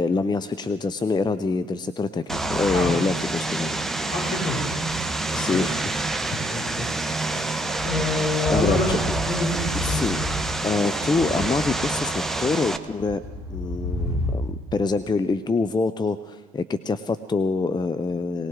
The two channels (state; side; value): normal; both; correlation 0.73